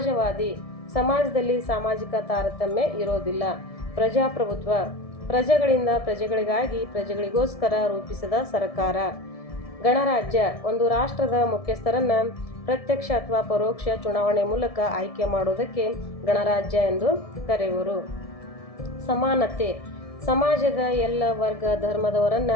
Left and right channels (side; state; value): right; late; 1.7 ms